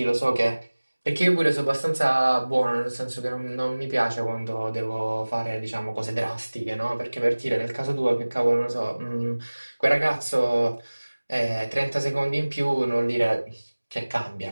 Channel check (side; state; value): both; inverted; correlation -1.00